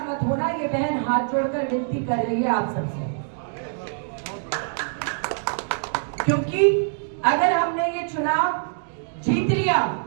मत होना। ये बहन हाथ जोड़कर विनती कर रही है आप सबसे, क्योंकि अगर हमने ये चुनाव जीत लिया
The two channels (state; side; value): silent; left; digital silence